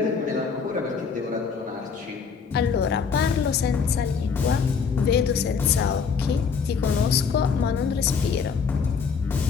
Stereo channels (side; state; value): right; quieter; 5.8 dB